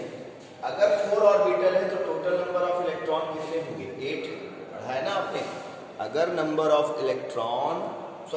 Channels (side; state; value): both; identical; correlation 1.00